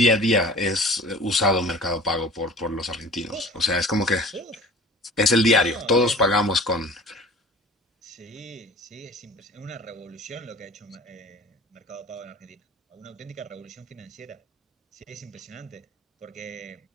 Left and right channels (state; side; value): normal; both; correlation 0.43